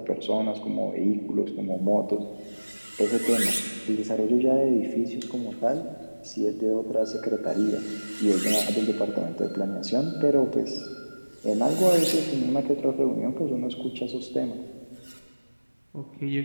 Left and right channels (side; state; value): both; inverted; correlation -1.00